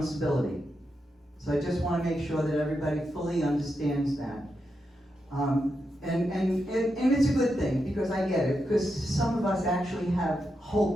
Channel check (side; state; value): both; normal; correlation 0.86